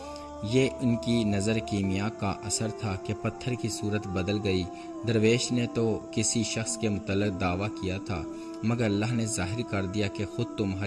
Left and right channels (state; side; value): identical; both; correlation 1.00